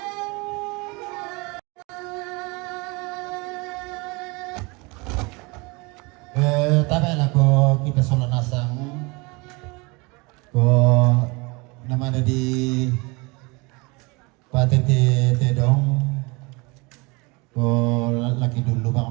Tapi lah ko kita solat nasang ko nama ada di patete tedong ko laki dulu bang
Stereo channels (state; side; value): quieter; left; 27.0 dB